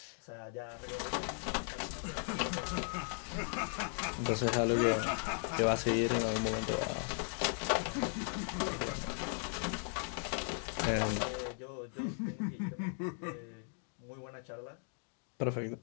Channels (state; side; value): silent; right; 53 dB below the other